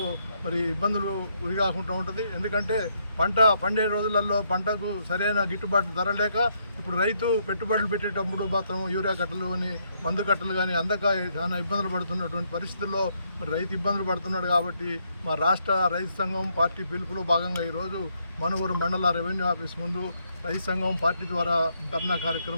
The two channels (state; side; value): inverted; both; correlation -0.74